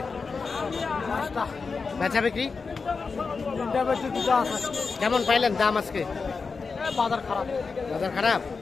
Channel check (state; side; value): quieter; right; 4.7 dB